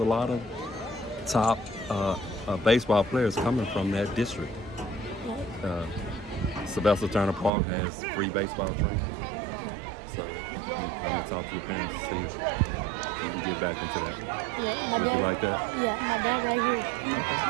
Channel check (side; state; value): left; drops out; at 7.5 s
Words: lot of top baseball players coming from that district. Sylvester Turner Park has free baseball training. So I'm gonna talk to your parents to see if you can get back into that. Yeah, Would you like that? Yeah, my dad right here. Okay.